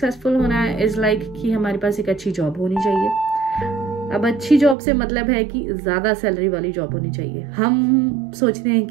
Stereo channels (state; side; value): drops out; left; at 4.8 s